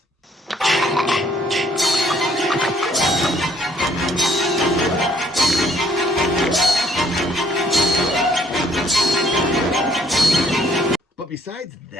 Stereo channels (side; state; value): both; normal; correlation 0.64